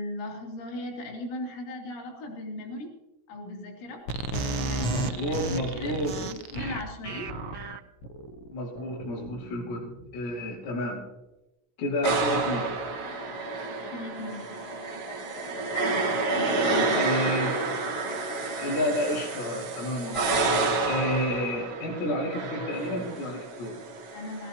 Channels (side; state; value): right; late; 16 ms